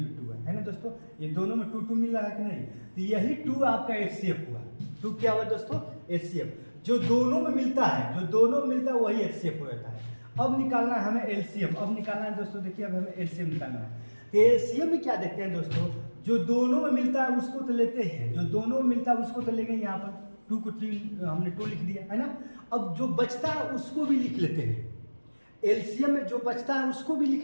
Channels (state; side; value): inverted; both; correlation -1.00